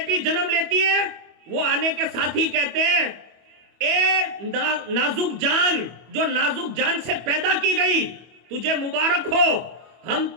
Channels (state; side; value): late; left; 25 ms